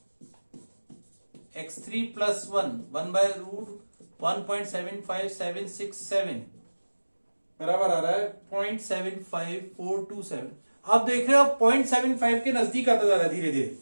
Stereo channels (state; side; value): inverted; both; correlation -1.00